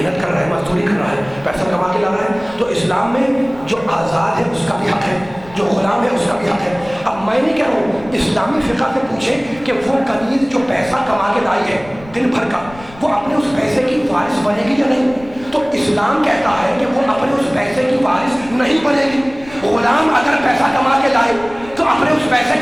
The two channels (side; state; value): left; noise; rumble, 20 dB below the sound